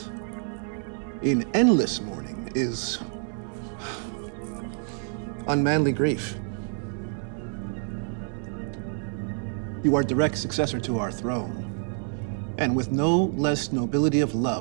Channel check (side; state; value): left; silent; 55 dB below the other